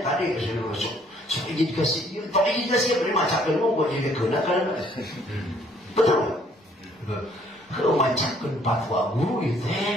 tadi saya masuk. Saya ingin dikasih, tapi ingin dikasih beri macakan umum jadi gunakan. Betul. Kalau macakan fatwa guru itu,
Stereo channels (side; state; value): both; normal; correlation 0.63